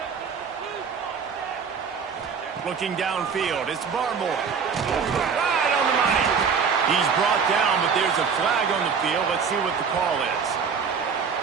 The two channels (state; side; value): quieter; left; 6.1 dB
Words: Looking downfield, it's Barmore. Right on the money. He's brought down, but there's a flag on the field. Let's see what the call is.